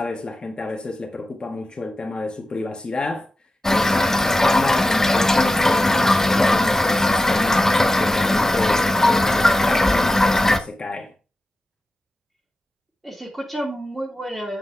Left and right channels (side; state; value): both; normal; correlation 0.93